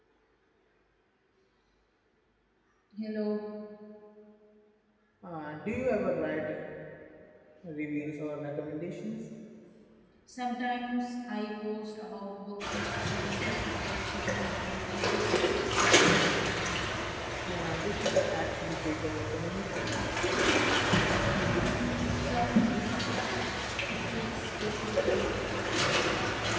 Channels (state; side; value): identical; both; correlation 1.00